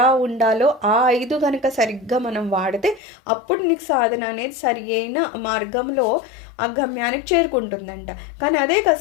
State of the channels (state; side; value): drops out; right; at 3.0 s